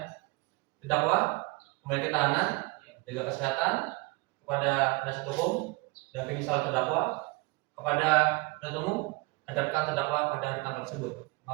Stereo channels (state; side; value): quieter; left; 25.2 dB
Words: Terdakwa kembali ke tahanan, jaga kesehatan kepada penasihat hukum dan misal terdakwa kepada penuntut umum, hadapkan terdakwa pada hari tanggal tersebut.